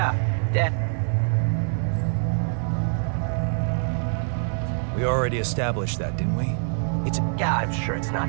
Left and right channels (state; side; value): silent; left; digital silence